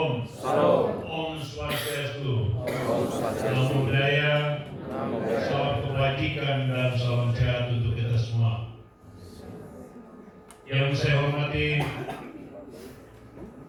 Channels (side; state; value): both; identical; correlation 1.00